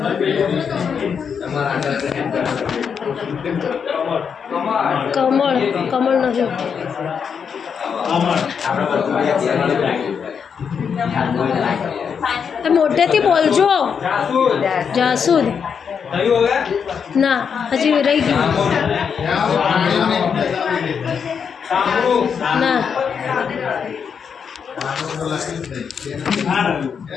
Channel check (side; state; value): right; quieter; 6.7 dB